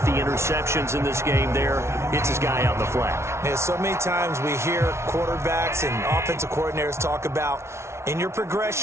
the interceptions in this game there. Hits his guy out in the flat. Yeah, so many times we hear quarterbacks and offensive coordinators talk about in your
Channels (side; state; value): left; late; 0.13 ms